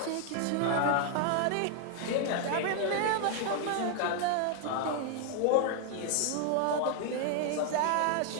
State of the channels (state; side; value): different; both; correlation 0.00